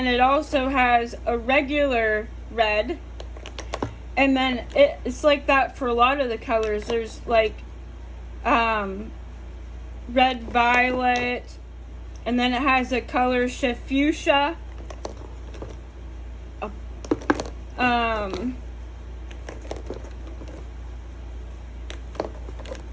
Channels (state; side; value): identical; both; correlation 1.00